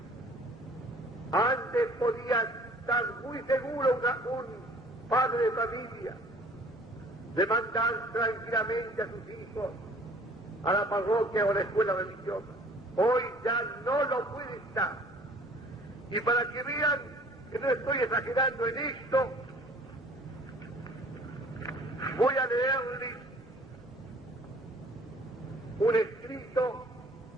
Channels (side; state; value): both; normal; correlation 0.53